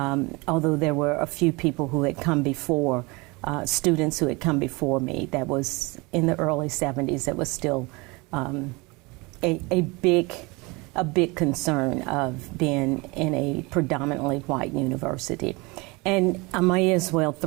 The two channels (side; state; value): left; quieter; 26.1 dB